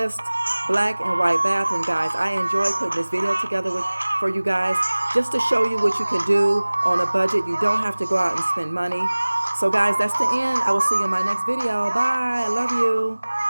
black and white bathroom, guys. I enjoy putting this video together for you guys just to show you what you can do on a budget. You don't have to go out and spend money. So guys, that's the end. I will see you in my next video. Bye. I love you.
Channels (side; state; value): both; inverted; correlation -1.00